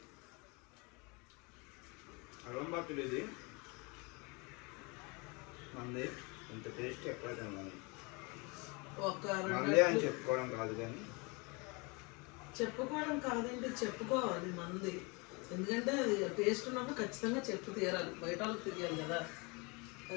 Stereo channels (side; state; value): right; quieter; 29.1 dB